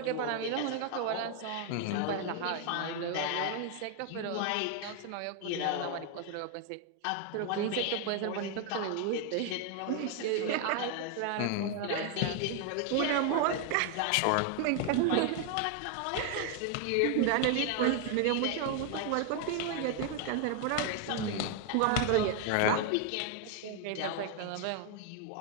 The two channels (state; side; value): different; both; correlation 0.01